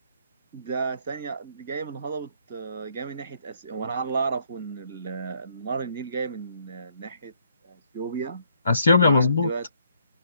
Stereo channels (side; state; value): both; inverted; correlation -0.69